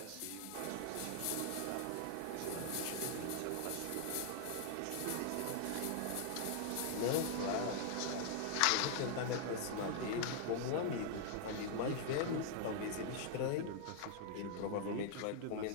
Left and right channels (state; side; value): different; both; correlation 0.00